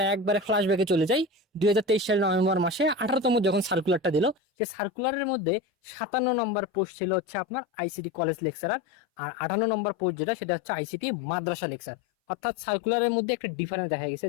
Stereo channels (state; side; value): drops out; right; at 4.4 s